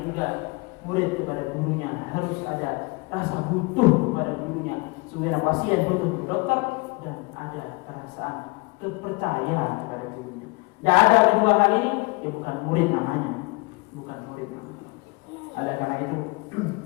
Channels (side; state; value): right; quieter; 27.6 dB